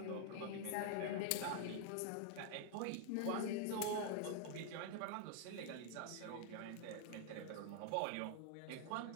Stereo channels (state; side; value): different; both; correlation 0.00